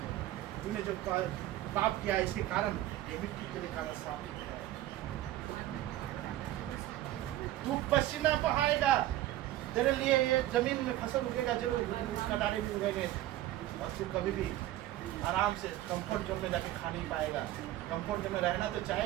तूने जो पाप किया इसके कारण ये मिट्टी के लिए कारण साबित है, तू पसीना बहाएगा, तेरे लिए ये जमीन में फसल उगेगा जरूर, कटारे भी उगेंगे, और तू कभी भी आराम से कंफर्ट जोन में जाके खा नहीं पाएगा। कंफर्ट जोन में रहना तो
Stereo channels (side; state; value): left; quieter; 14.6 dB